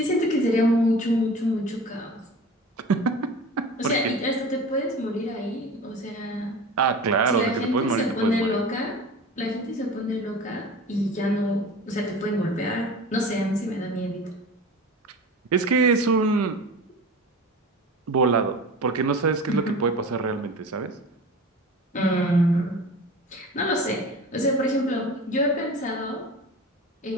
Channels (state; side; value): normal; both; correlation 0.36